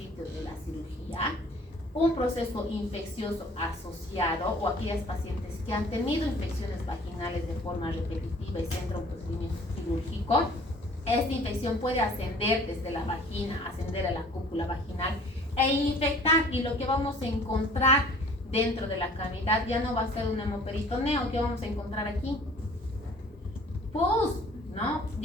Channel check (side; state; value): both; normal; correlation 0.52